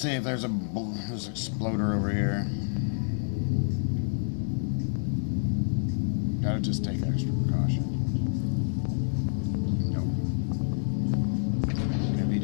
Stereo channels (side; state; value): right; silent; digital silence